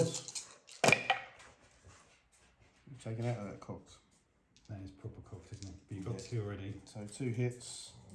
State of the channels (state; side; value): identical; both; correlation 1.00